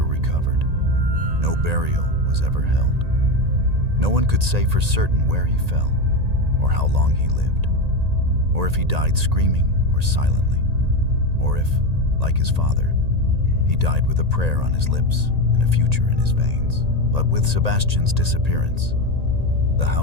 recovered. No burial was ever held. No one could say for certain where he fell, or how long he lived, or if he died screaming or silently, or if, like his father, he died with a prayer on his lips and a future in his veins. But with Sebastian's disappearance, the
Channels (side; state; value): left; late; 1.8 ms